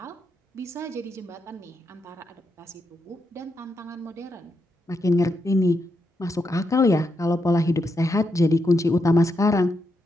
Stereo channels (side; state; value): both; normal; correlation 0.82